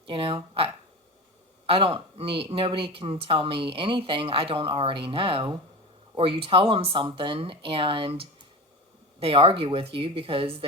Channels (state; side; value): normal; both; correlation 0.27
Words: You know, I don't need, nobody can tell me anything I don't already know. Or you tell them something and they argue with you because